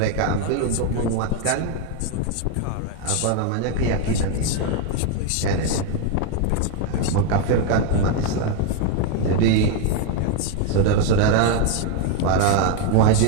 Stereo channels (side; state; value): both; different; correlation 0.01